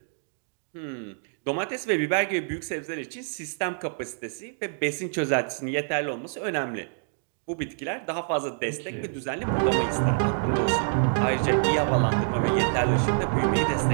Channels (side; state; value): left; silent; digital silence